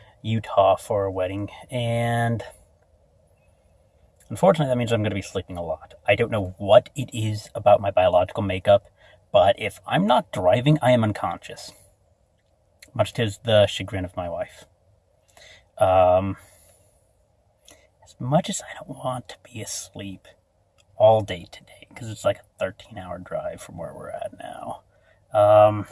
Utah for a wedding, and unfortunately that means I'm going to be sleeping a lot. I don't know what it is about my biological makeup, but if I'm not driving, I am unconscious, much to the chagrin of my wife. As much as I don't want to be asleep all day today, because it's like a 13-hour drive from where we're at now,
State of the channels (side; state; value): both; identical; correlation 1.00